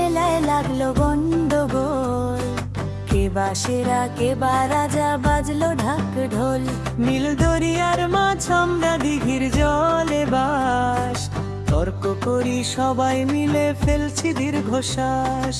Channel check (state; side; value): identical; both; correlation 1.00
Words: লাগলো গন্ডগোল, কে বা সেরা কে বা রাজা, বাজলো ঢাক ঢোল। নীল দরিয়ার মাছ আমরা দিঘির জলে বাস, তর্ক করি সবাই মিলে ফেলছি দীর্ঘশ্বাস।